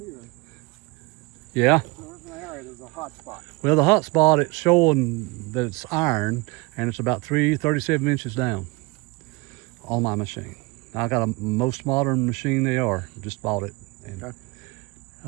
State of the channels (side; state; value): left; quieter; 25.3 dB